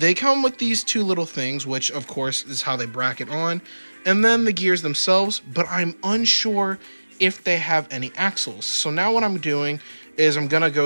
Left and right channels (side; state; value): both; inverted; correlation -1.00